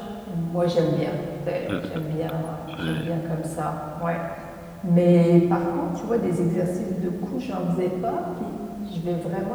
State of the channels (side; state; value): both; identical; correlation 1.00